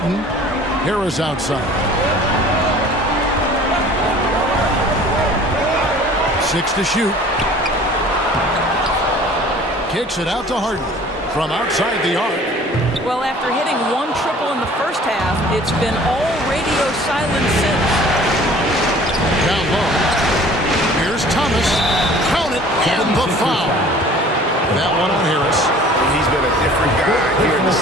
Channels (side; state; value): both; normal; correlation 0.49